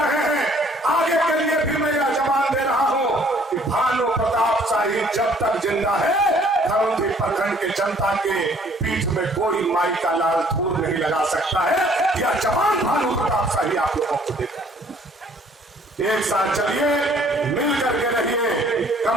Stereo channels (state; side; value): normal; both; correlation 0.59